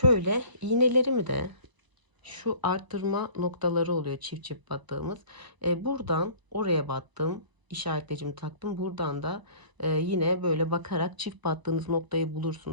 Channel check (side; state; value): left; late; 1.0 ms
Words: iğnelerimi de şu arttırma noktaları oluyor çift çift battığımız. Buradan oraya battım. İşaretleyicimi taktım. Buradan da yine böyle bakarak çift battığınız noktayı